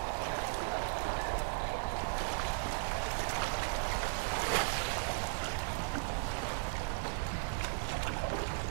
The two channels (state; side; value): silent; left; digital silence